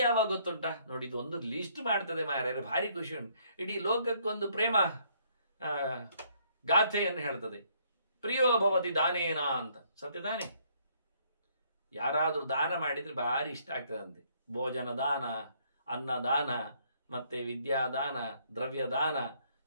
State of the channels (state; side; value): inverted; both; correlation -0.67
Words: ಗೊತ್ತುಂಟ ನೋಡಿ, ಇದು ಒಂದು ಲಿಸ್ಟ್ ಮಾಡ್ತದೆ ಮಾರ್ಯಾರೆ, ಭಾರಿ ಖುಷಿ ಉಂಟು. ಇಡೀ ಲೋಕಕ್ಕೊಂದು ಪ್ರೇಮ ಗಾಥೆಯನ್ನು ಹೇಳ್ತದೆ. ಪ್ರಿಯೋ ಭವತಿ ದಾನೇನ ಅಂತ. ಸತ್ಯ ತಾನೆ? ಯಾರಾದ್ರೂ ದಾನ ಮಾಡಿದ್ರೆ ಭಾರಿ ಇಷ್ಟ ಆಗ್ತದಂತೆ. ಭೋಜನ ದಾನ, ಅನ್ನದಾನ, ಮತ್ತೆ ವಿದ್ಯಾದಾನ, ದ್ರವ್ಯ ದಾನ,